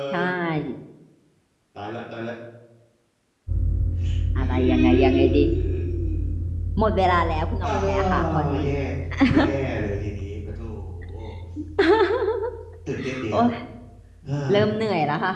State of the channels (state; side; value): identical; both; correlation 1.00